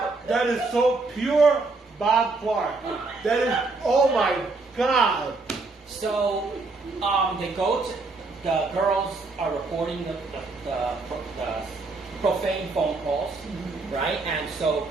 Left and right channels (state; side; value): quieter; left; 3.6 dB